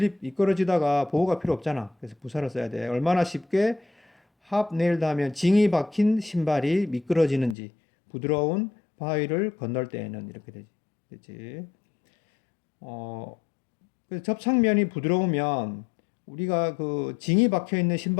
미끄러지다가 보호가 필요 없잖아. 그래서 부사를 써야 돼. 얼마나 쉽게 합네일드 하면 징이 박힌 신발이 미끄러지는지 부드러운 바위를 건널 때에는 이렇게 되지. 그치? 그래서 접착면이 부드러우면 우리가 그 징이 박혀 있는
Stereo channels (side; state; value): right; drops out; at 7.6 s